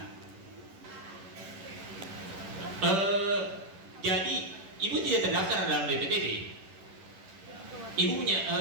Jadi Ibu tidak terdaftar dalam BPTB. Ibu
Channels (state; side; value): late; left; 11 ms